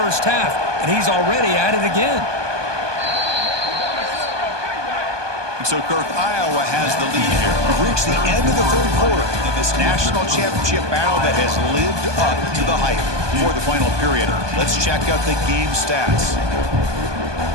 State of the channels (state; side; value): late; left; 1.2 ms